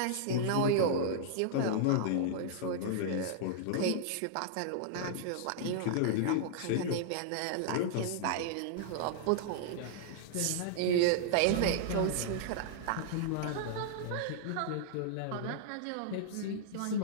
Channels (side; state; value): both; different; correlation -0.01